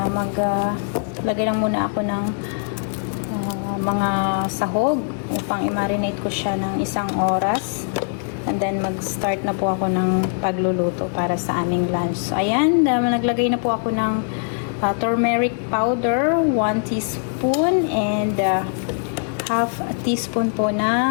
maglagay lang muna ako ng mga sahog upang i-marinate ko siya ng 1 oras. And then, mag-start na po ako ng pagluluto para sa aming lunch. So, ayan, naglagay na po ako ng turmeric powder, 1 teaspoon, and half a teaspoon po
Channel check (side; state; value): right; silent; digital silence